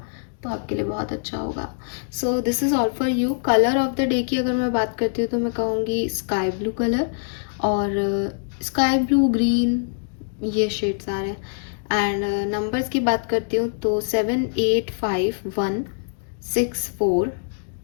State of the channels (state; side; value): silent; right; digital silence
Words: तो आपके लिए बहुत अच्छा होगा। So this is all for you. Colour of the day की अगर मैं बात करती हूँ तो मैं कहूँगी स्काई ब्लू कलर, और स्काई ब्लू, ग्रीन, ये शेड्स आ रहे हैं। एंड नंबर्स की बात करती हूँ तो 7 8 5 1 6 4